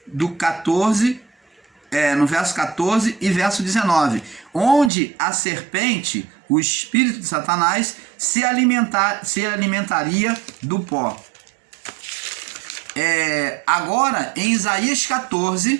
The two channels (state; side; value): drops out; left; at 4.9 s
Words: do 14, no verso 14 e verso 19, onde a serpente, o espírito de Satanás, se alimentaria do pó. Agora, em Isaías